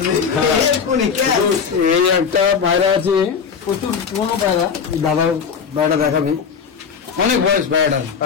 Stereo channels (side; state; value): right; quieter; 6.4 dB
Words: থেকে। এই একটা পায়রা আছে, প্রচুর পুরোনো পায়রা, দাদার পায়রা দেখাবি, অনেক বয়স পায়রা,